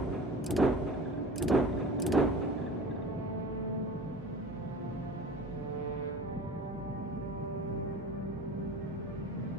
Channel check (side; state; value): both; normal; correlation 0.39